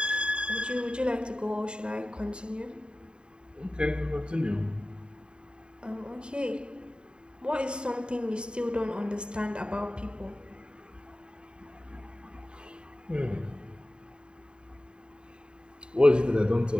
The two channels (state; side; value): late; left; 0.050 ms